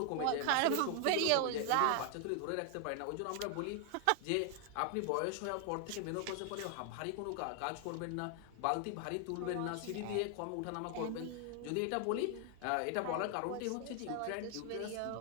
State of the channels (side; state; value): both; different; correlation 0.00